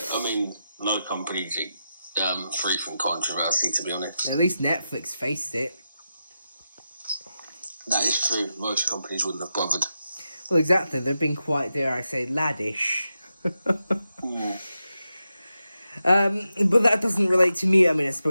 I mean, no company's free from controversy, to be honest. At least Netflix faced it. That is true. Most companies wouldn't have bothered. Well, exactly. They've been quite, dare I say, laddish. But that doesn't relate to me. I mean, I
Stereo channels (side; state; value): both; inverted; correlation -0.88